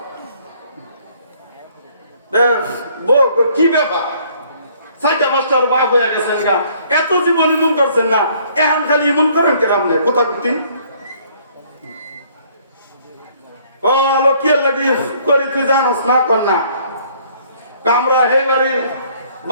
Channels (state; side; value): inverted; both; correlation -0.61